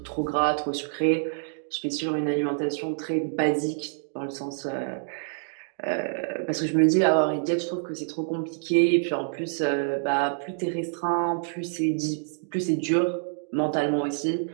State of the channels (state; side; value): silent; left; digital silence